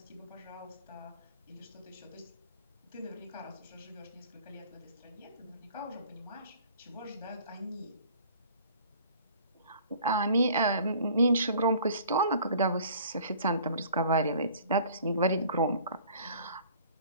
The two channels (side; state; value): both; inverted; correlation -0.51